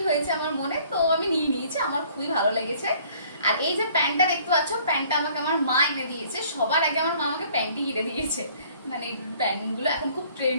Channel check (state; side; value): inverted; both; correlation -0.57